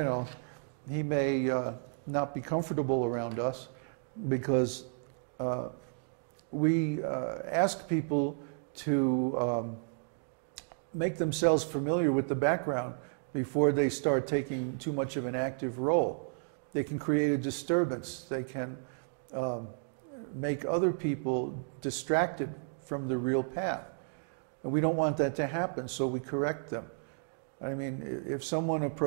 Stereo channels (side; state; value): left; silent; digital silence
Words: know, he may not be comfortable around us because we ask people to make themselves familiar with the background before they start taking too much of an active role. They can create a disturbance. They can make other people distracted from the real path. And we don't want that to happen, so we correct them. I mean, if someone